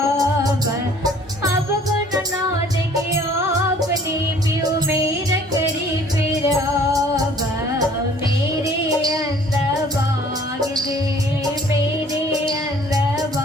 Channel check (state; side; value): normal; both; correlation 0.54